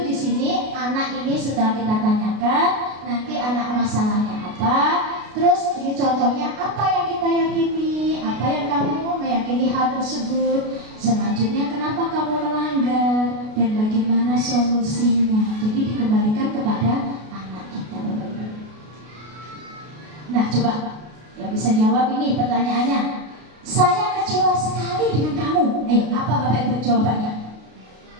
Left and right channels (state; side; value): late; left; 33 ms